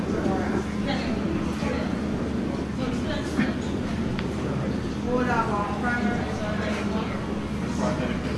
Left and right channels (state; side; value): identical; both; correlation 1.00